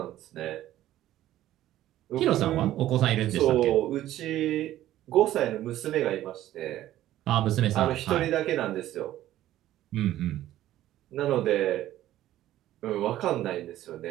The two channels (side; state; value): left; quieter; 13.7 dB